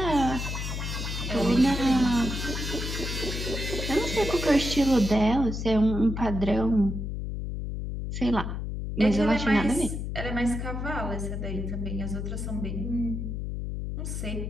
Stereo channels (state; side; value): noise; left; hum, 4 dB below the sound